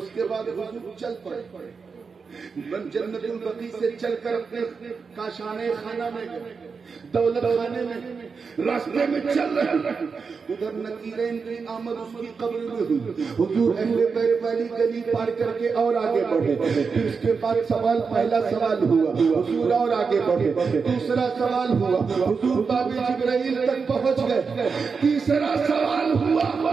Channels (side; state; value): left; quieter; 5.2 dB